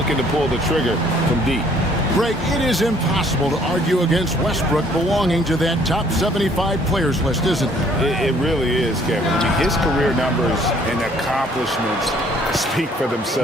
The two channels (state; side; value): normal; both; correlation 0.60